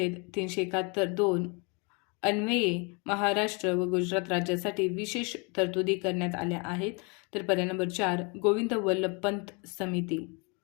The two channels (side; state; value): right; quieter; 32.3 dB